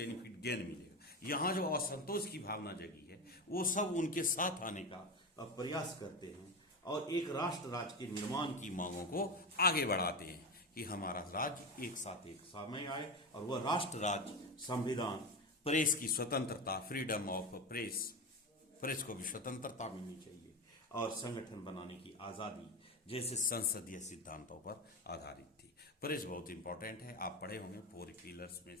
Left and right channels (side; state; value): both; normal; correlation 0.20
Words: गेन मिलेगा। यहाँ जो असंतोष की भावना जगी है वो सब उनके साथ आने का प्रयास करते हैं और एक राष्ट्र राज्य के निर्माण की मांगों को आगे बढ़ाते हैं कि हमारा राज्य एक साथ एक समय आए और वह राष्ट्र राज्य संविधान, प्रेस की स्वतंत्रता, फ्रीडम ऑफ प्रेस, प्रेस को भी स्वतंत्रता मिलनी चाहिए और संगठन बनाने की आजादी जैसे संसदीय सिद्धांतों पर आधारित थी। प्रेस बहुत इंपॉर्टेंट है, आप पढ़े होंगे, 4 पिलर्स में